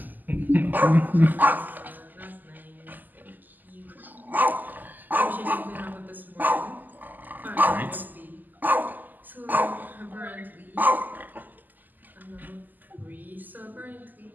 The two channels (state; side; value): late; left; 0.085 ms